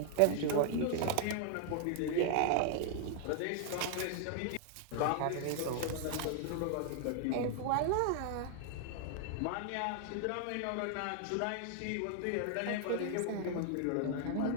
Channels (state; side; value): different; both; correlation 0.00